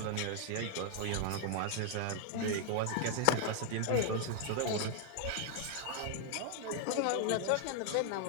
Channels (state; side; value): different; both; correlation 0.00